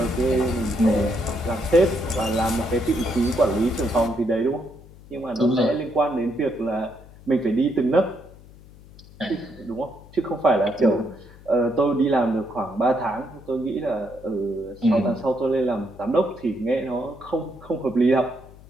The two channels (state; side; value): noise; left; hum, 21 dB below the sound